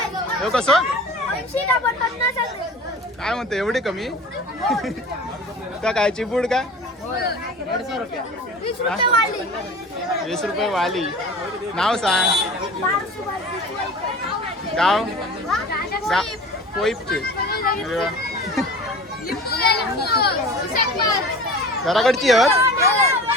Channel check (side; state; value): both; normal; correlation 0.39